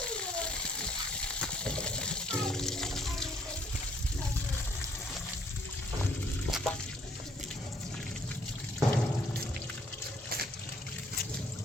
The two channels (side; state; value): both; normal; correlation 0.65